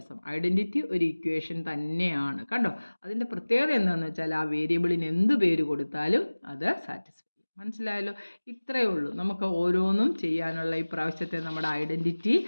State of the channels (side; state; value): both; inverted; correlation -1.00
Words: ഐഡൻറ്റിറ്റി ഒരു ഇക്വേഷൻ തന്നെയാണ്. കണ്ടോ, അതിൻ്റെ പ്രത്യേകത എന്താണെന്ന് വെച്ചാൽ ആ വേരിയബിളിന് എന്ത് പേര് കൊടുത്താലും അത് സാറ്റിസ്ഫൈ. മനസ്സിലായല്ലോ. ഇത്രയേ ഉള്ളൂ നമുക്ക് ഓരോന്നും ചെയ്യാനുള്ള ഈ പ്രാവശ്യത്തെ നമ്മുടെ ഐഡൻറ്റിറ്റി.